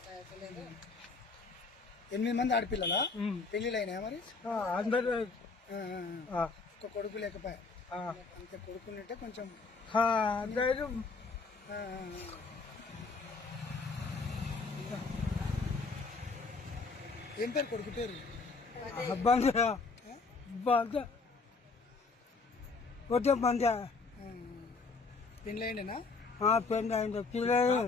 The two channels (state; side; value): quieter; right; 4.2 dB